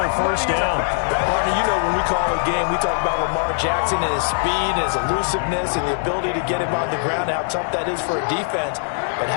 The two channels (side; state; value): right; silent; 65 dB below the other